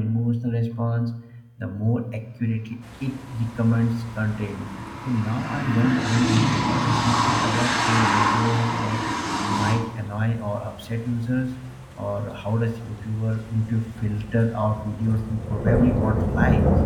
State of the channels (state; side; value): identical; both; correlation 1.00